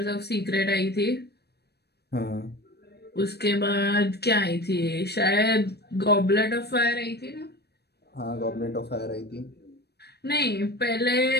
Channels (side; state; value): right; late; 0.47 ms